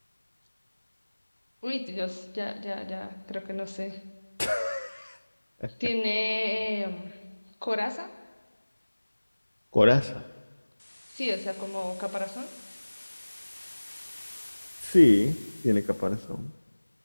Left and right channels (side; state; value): both; inverted; correlation -1.00